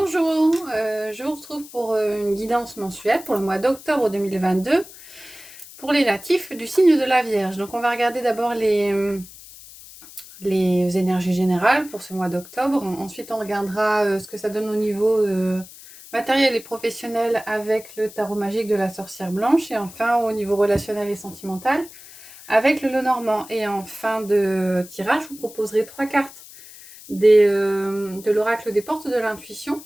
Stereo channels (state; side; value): noise; left; hiss, 18 dB below the sound